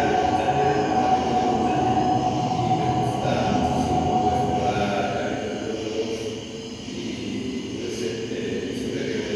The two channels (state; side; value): identical; both; correlation 1.00